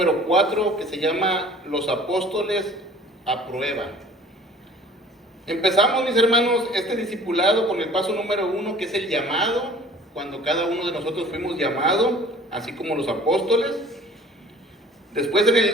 4, que se llama los apóstoles a prueba. Empezamos, mis hermanos, este discipulado con el paso número 1, que es el llamado, cuando cada uno de nosotros fuimos llamados, así como los apóstoles. Después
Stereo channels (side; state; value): both; normal; correlation 0.49